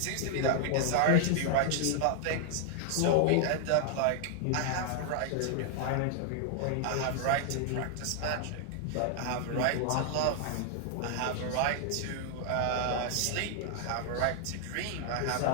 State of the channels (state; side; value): different; both; correlation 0.00